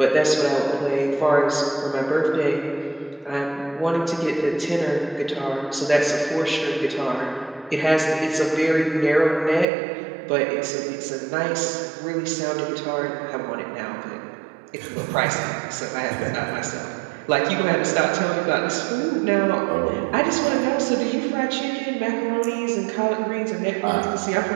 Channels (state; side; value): drops out; left; at 9.7 s